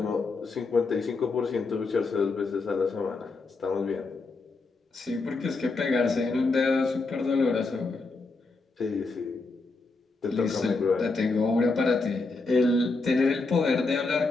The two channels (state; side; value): quieter; right; 3.7 dB